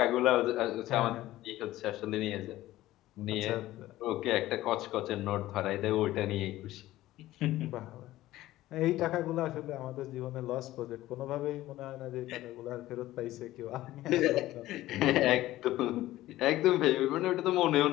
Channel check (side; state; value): right; quieter; 15.7 dB